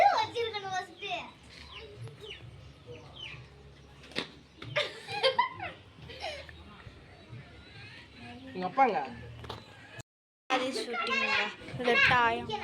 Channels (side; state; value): both; identical; correlation 1.00